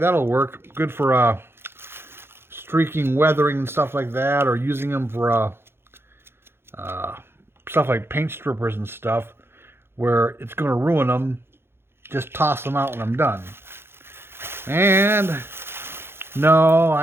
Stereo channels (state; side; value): late; left; 0.11 ms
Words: work. Good for streaking, weathering, and stuff like that, or using them for stuff like paint strippers and stuff, where it's going to ruin them. Just toss them out when I'm done. And no,